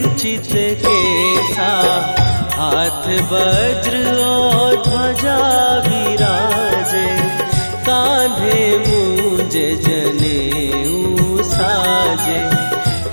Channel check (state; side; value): inverted; both; correlation -1.00